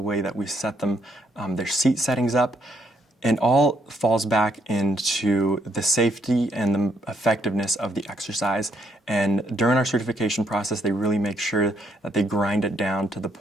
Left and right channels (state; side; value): normal; both; correlation 0.71